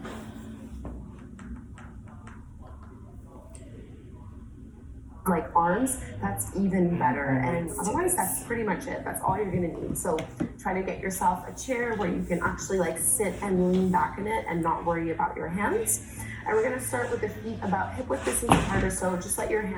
Like arms, that's even better. And otherwise, that's pretty much it. That's all you're gonna need. So try to get yourself a chair where you can actually like sit and lean back in it and not worry about your hands. And we're gonna start with the feet about hip width distance apart or so. Just let your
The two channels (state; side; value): identical; both; correlation 1.00